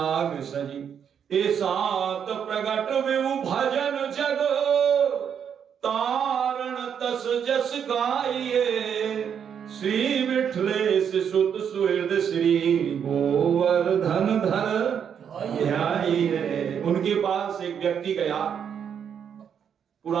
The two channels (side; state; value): left; quieter; 7.9 dB